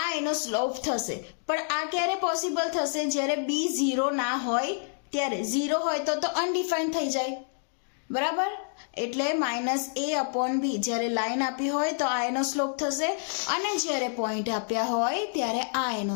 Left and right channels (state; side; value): silent; right; digital silence